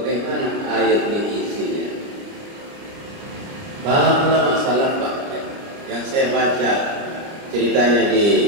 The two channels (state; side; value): late; left; 30 ms